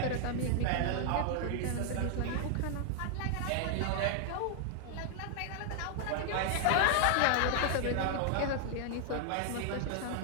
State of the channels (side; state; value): both; different; correlation 0.00